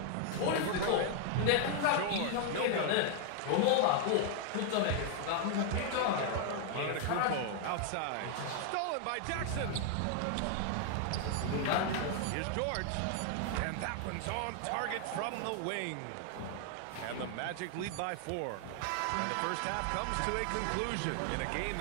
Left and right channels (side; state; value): both; different; correlation 0.00